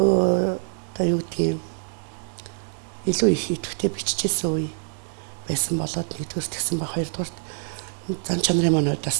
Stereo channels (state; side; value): silent; left; 56 dB below the other